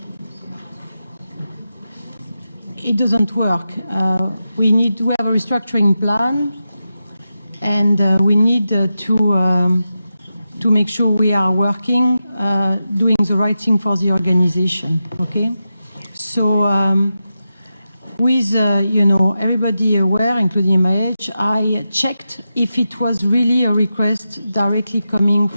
it doesn't work. We have a restructuring plan, and we need to make sure we are working, doing the right thing for the organization. Okay, so with everybody aware, including MIH, I checked if it was really a request directly coming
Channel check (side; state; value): both; inverted; correlation -0.90